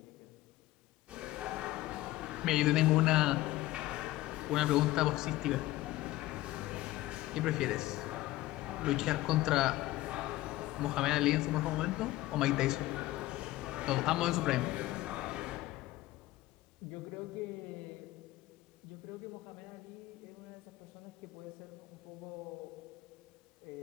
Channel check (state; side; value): quieter; right; 17.0 dB